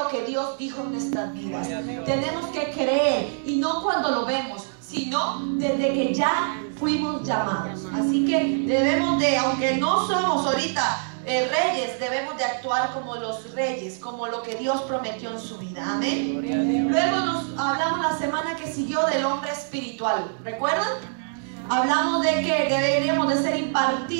que Dios dijo en nuestras vidas. Tenemos que creer, y no cuando lo vemos, sino desde que ya fuimos llamados. Así que debemos de, aunque no somos ahorita reyes, debemos de actuar como los reyes, como lo que Dios prometió en su vida. Amén. Luego nos hablamos la semana que siguió del hombre espiritual. ¿Recuerdan? Hablamos de que deberíamos de ser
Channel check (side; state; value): left; silent; digital silence